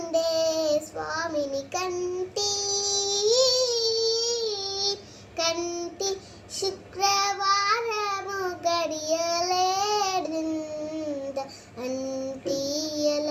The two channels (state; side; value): identical; both; correlation 1.00